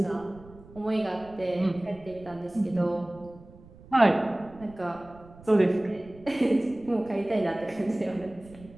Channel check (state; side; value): noise; right; rumble, 21 dB below the sound